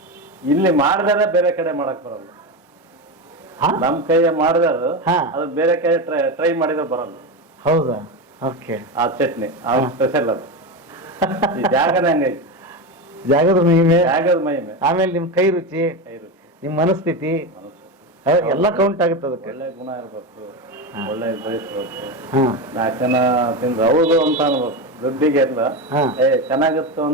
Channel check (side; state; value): both; normal; correlation 0.17